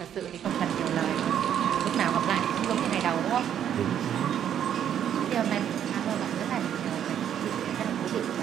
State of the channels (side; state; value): left; quieter; 9.7 dB